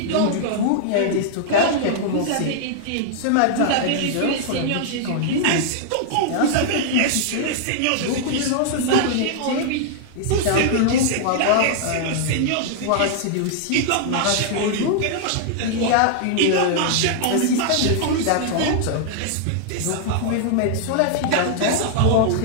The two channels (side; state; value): both; different; correlation -0.01